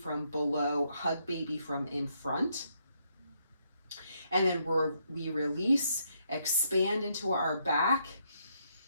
below, hug baby from in front. And then we release, expand into our back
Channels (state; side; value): inverted; both; correlation -0.75